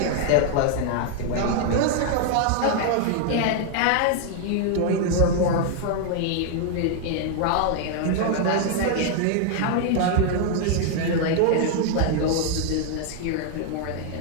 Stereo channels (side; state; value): both; different; correlation 0.00